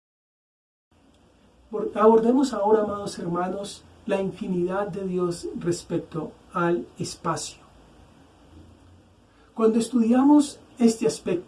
Abordemos ahora, amados hermanos, la infinidad de Dios respecto al espacio. Cuando estudiamos este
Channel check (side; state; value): both; identical; correlation 1.00